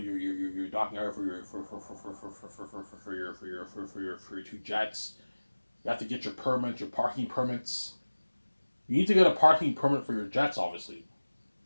your docking area for your two jets. You have to get your permits, your parking permits. You need to get a parking permit for your jets, obviously.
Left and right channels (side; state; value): both; inverted; correlation -1.00